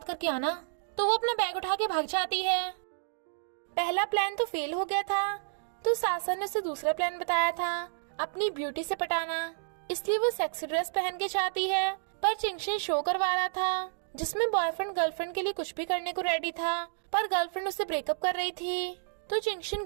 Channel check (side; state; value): left; silent; digital silence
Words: करके आना। तो वो अपना बैग उठा के भाग जाती है। पहला प्लान तो फेल हो गया था, तो सासन ने उसे दूसरा प्लान बताया था, अपनी ब्यूटी से पटाना। इसलिए वो सेक्सी ड्रेस पहन के जाती है, पर चिंगशन शो करवा रहा था जिसमें बॉयफ्रेंड गर्लफ्रेंड के लिए कुछ भी करने को रेडी था, पर गर्लफ्रेंड उससे ब्रेकअप कर रही थी। तो चिंगशन